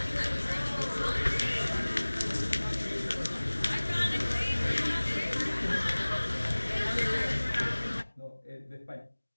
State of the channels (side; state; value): both; inverted; correlation -1.00